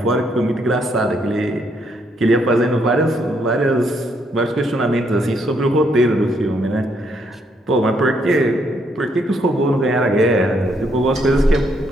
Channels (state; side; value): normal; both; correlation 0.73